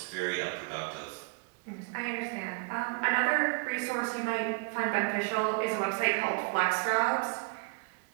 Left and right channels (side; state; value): left; quieter; 31.9 dB